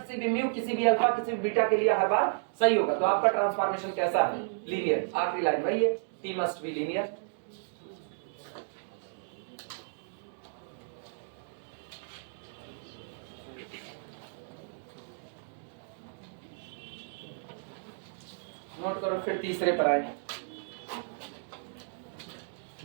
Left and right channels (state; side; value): silent; left; digital silence